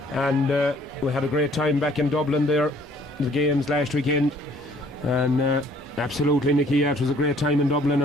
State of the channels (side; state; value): both; normal; correlation 0.59